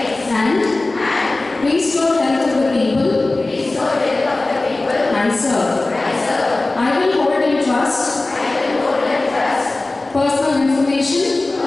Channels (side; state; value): right; quieter; 3.1 dB